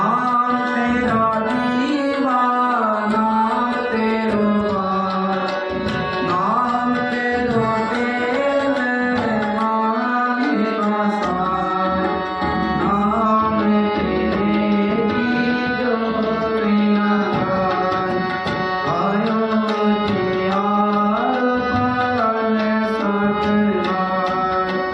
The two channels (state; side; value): identical; both; correlation 1.00